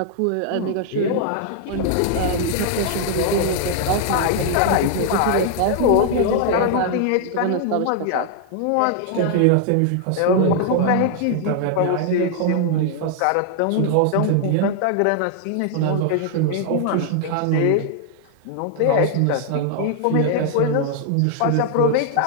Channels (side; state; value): both; different; correlation -0.01